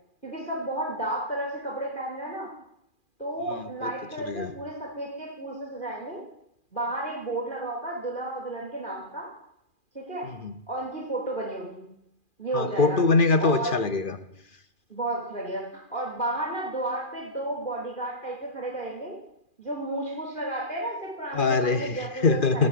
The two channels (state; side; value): late; right; 2.4 ms